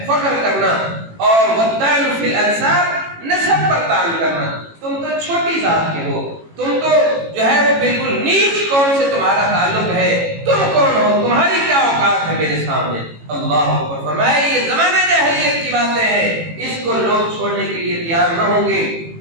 فخر کرنا. اور والطعن فی الانساب، نسب پر تعلق کرنا. تم تو چھوٹی ذات کے ہو، تم تو جو ہے وہ بالکل نیچ قوم سے تمہارا تعلق ہے، تم کون ہو، تمہاری کیا اوقات ہے میرے سامنے. اللہ اکبر. فرمایا یہ زمانہ جاہلیت کی باتیں ہیں، اس کو لوگ چھوڑنے کے لیے تیار نہ ہوں گے.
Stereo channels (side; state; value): left; late; 18 ms